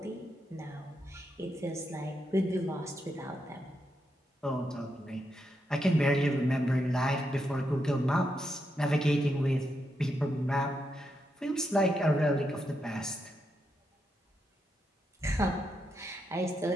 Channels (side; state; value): both; normal; correlation 0.82